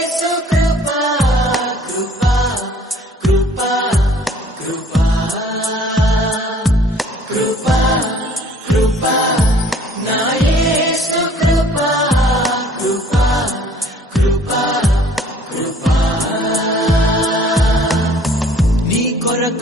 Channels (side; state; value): both; normal; correlation 0.55